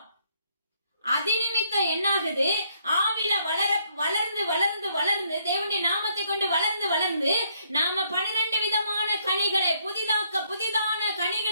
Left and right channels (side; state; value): both; inverted; correlation -0.70